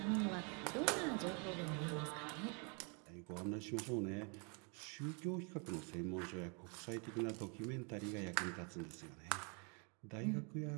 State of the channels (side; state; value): left; quieter; 35.6 dB